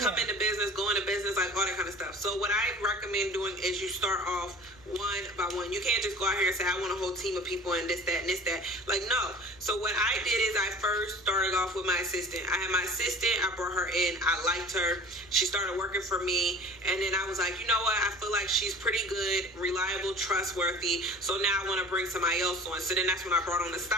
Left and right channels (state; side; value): normal; both; correlation 0.42